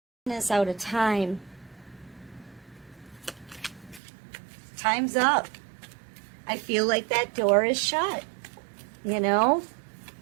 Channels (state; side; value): drops out; left; at 4.0 s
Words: is out of time. Time's up. I feel like that door is shut. You know?